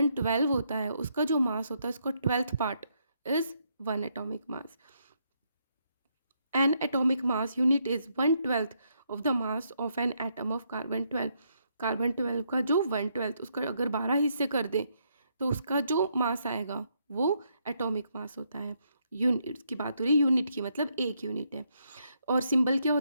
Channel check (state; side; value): inverted; both; correlation -0.75